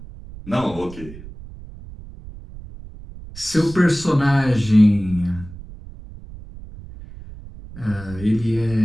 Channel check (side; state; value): right; noise; rumble, 16 dB below the sound